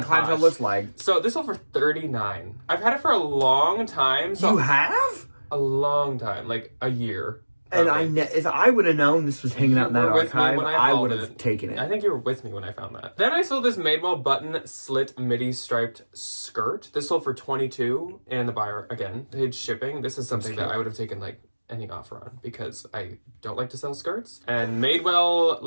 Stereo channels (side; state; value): both; inverted; correlation -1.00